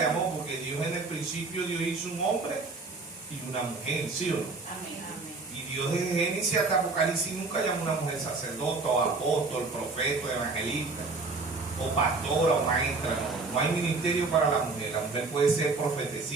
porque Dios en el principio Dios hizo un hombre y una mujer, ¿sí o no? Y Dios desde Génesis hasta Apocalipsis nunca llamó a una mujer sacerdote o apóstol, profeta, evangelista o pastora o maestra. No hay ministerio para la mujer. La mujer puede ser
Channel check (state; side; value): quieter; left; 3.8 dB